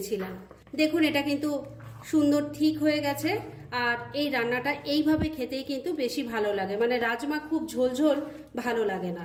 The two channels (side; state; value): both; identical; correlation 1.00